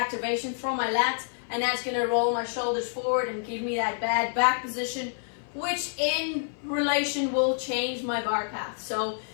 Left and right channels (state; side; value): silent; right; 55 dB below the other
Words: from my lats, and that's going to roll my shoulders forward and give me that bad back position, which in relation will change my bar path. So